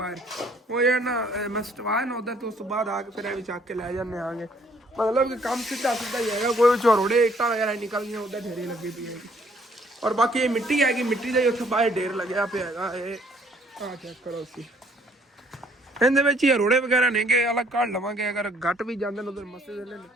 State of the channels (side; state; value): both; normal; correlation 0.63